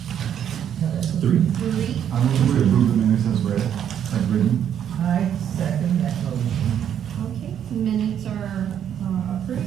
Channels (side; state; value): left; quieter; 9.3 dB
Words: 3. 3. I move to approve the minutes as read, as written. I second that motion. Okay, minutes are